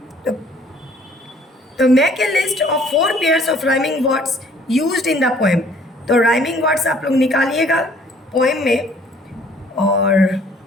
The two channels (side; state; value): both; normal; correlation 0.58